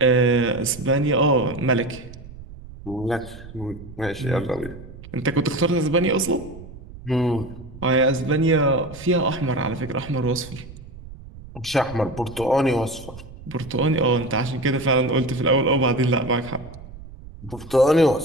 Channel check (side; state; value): right; noise; rumble, 16 dB below the sound